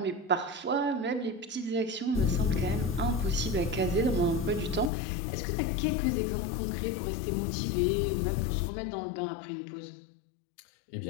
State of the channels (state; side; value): drops out; right; at 4.9 s